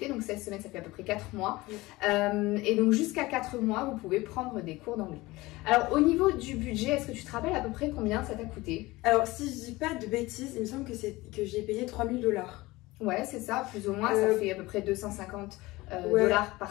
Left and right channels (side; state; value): right; quieter; 20.4 dB